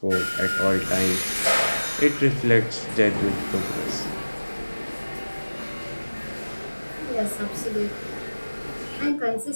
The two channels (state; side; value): inverted; both; correlation -1.00